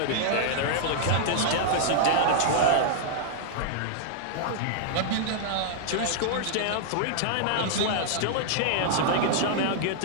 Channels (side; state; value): both; different; correlation -0.01